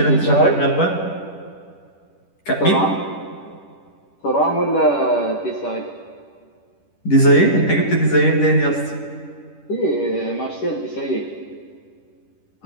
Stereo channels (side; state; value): right; late; 10 ms